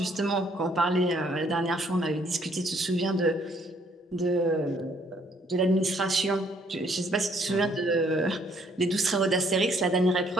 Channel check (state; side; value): normal; both; correlation 0.66